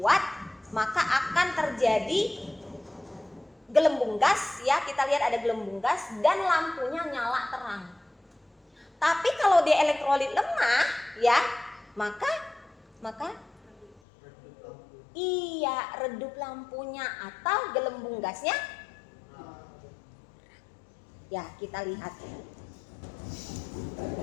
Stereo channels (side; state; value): right; drops out; at 14.0 s